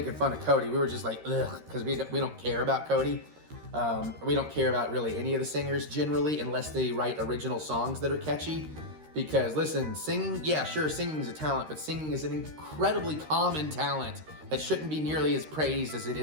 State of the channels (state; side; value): late; left; 13 ms